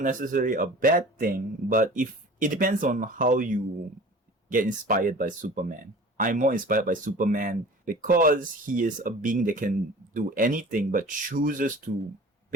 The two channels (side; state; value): both; normal; correlation 0.42